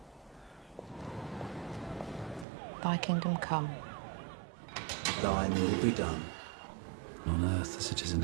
Thy kingdom come. Thine will be done, on earth as it is in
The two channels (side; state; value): left; drops out; at 2.5 s